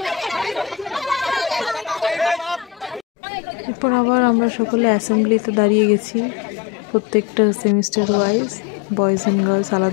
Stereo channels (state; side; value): drops out; right; at 3.1 s